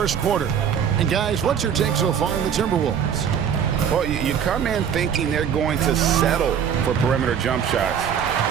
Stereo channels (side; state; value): left; quieter; 8.1 dB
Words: quarter. And guys, what's your take so far on the Timberwolves? Well, you come in thinking they're going to settle for perimeter jump shots.